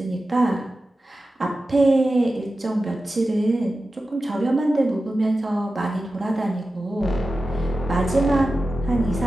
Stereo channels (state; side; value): normal; both; correlation 0.93